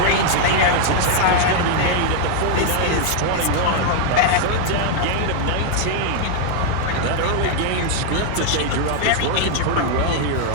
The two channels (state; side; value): different; both; correlation 0.00